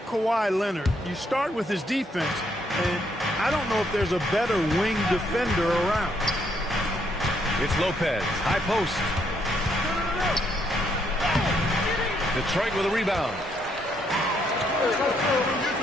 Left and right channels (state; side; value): normal; both; correlation 0.73